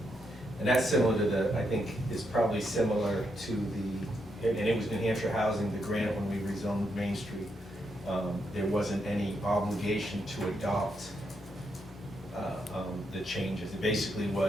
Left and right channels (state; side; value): normal; both; correlation 0.80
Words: And that's similar to the, I think, is probably similar to the, and it was New Hampshire Housing, the grant when we rezoned Main Street. There wasn't any obligation to adopt the changes. It basically